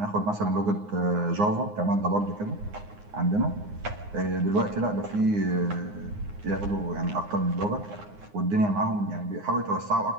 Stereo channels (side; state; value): left; late; 9.7 ms